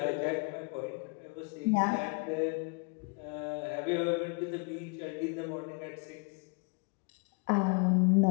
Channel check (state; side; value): quieter; right; 32.2 dB